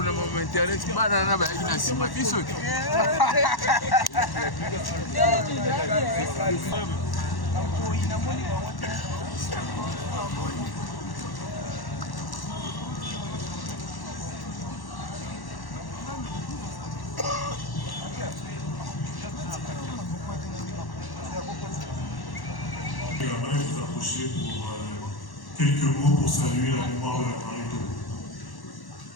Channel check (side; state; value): right; late; 1.1 ms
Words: na mama internet bana na bayaki na nsima biso te J'aimerais vous approcher pour quelques mots pour saluer la mémoire de la Marito.